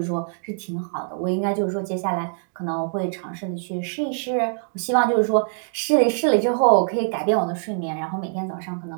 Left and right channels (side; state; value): left; silent; digital silence